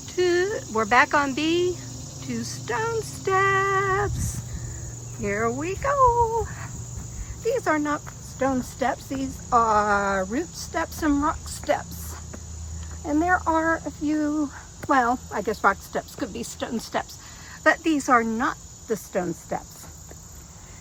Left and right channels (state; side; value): identical; both; correlation 1.00